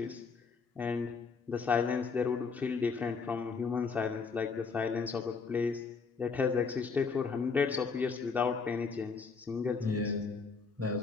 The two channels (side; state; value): right; quieter; 5.0 dB